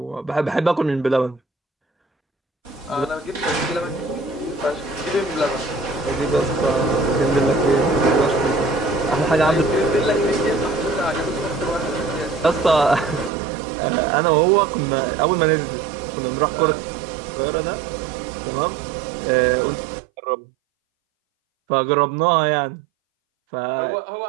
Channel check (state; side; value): drops out; left; at 13.3 s